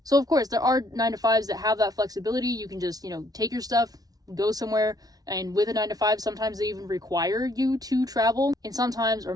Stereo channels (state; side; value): late; left; 0.18 ms